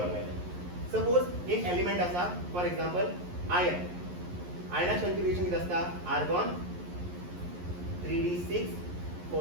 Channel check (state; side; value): late; left; 11 ms